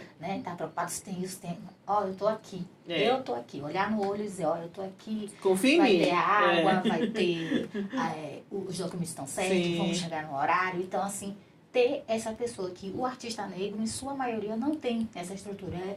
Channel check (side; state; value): both; identical; correlation 1.00